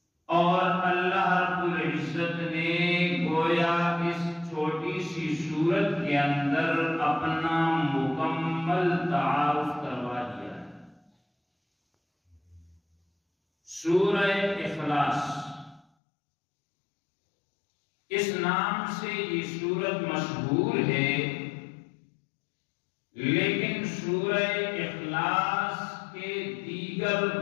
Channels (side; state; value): right; drops out; at 15.9 s